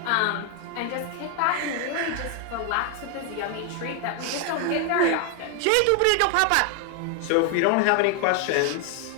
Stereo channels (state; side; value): different; both; correlation 0.01